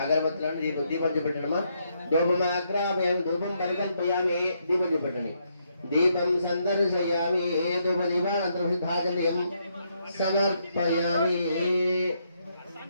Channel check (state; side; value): inverted; both; correlation -0.76